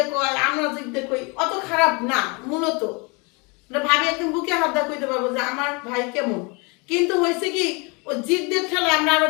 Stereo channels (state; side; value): quieter; right; 30.1 dB